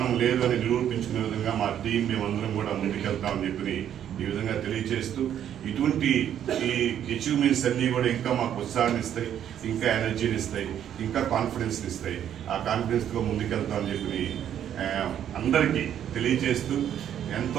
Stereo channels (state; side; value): quieter; left; 10.0 dB